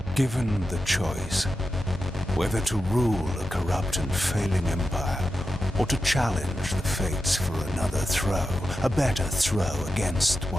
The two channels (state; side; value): normal; both; correlation 0.91